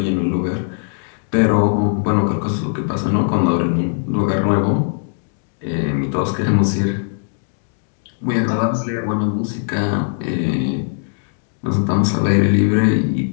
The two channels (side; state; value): right; silent; digital silence